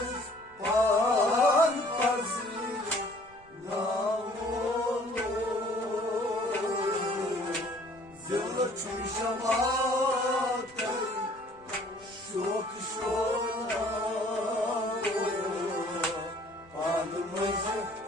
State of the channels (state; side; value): noise; right; rumble, 27 dB below the sound